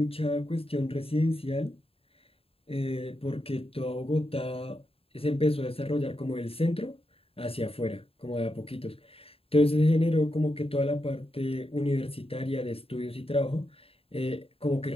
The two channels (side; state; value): right; late; 0.27 ms